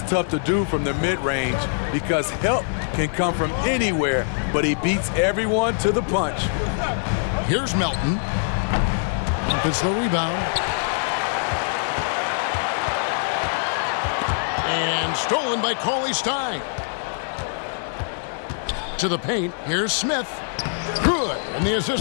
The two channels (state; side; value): silent; right; digital silence